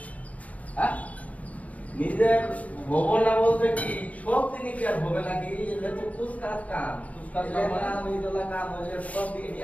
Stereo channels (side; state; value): right; late; 0.069 ms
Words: হ্যাঁ, নিজের ভবন না বলতে কি সব দিনই কি আর হবে নাকি? এটা তো কুচকাজ কাম। কুচকাজ কাম মানে? ওই দলা কাম হলে সব দিকে